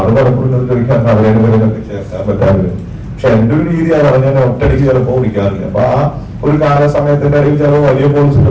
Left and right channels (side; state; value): both; identical; correlation 1.00